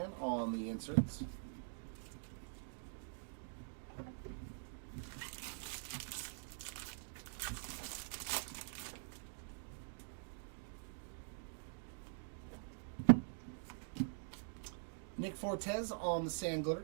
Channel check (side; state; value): left; silent; digital silence